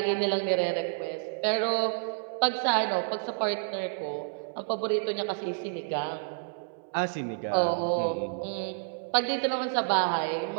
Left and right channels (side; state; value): left; silent; 58 dB below the other